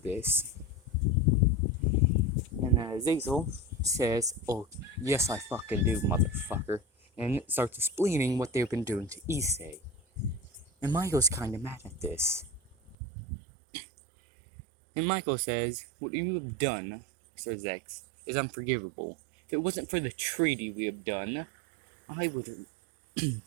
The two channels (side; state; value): left; drops out; at 13.0 s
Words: And Zazel says, "Oh, yes I fucking do, motherfucker." And starts explaining what they've been doing to Issei. And Michael's kinda mad at this. And Michael says, "What you have done, Sir Zex, is unforgivable. If it wasn't for the treaty we have done, I would